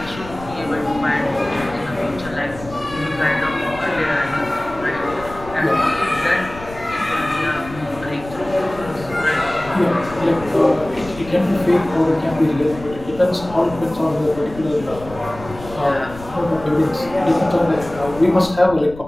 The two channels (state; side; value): noise; left; rumble, 15 dB below the sound